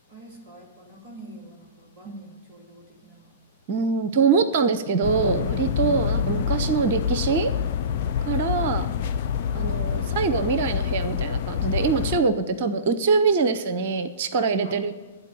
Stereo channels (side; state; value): both; inverted; correlation -0.34